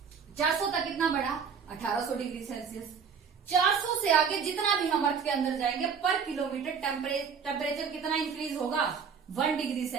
400 तक कितना बढ़ा, 1800 डिग्री सेल्सियस। 400 से आगे जितना भी हम अर्थ के अंदर जाएंगे पर किलोमीटर टेम्परेचर कितना इंक्रीज होगा, 1 डिग्री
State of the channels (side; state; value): left; quieter; 6.4 dB